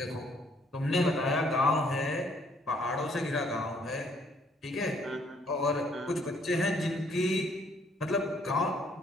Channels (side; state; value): both; normal; correlation 0.65